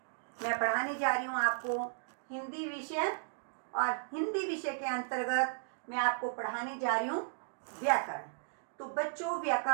मैं पढ़ाने जा रही हूँ आपको हिंदी विषय। और हिंदी विषय के अंतर्गत मैं आपको पढ़ाने जा रही हूँ व्याकरण। तो बच्चों,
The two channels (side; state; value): left; silent; digital silence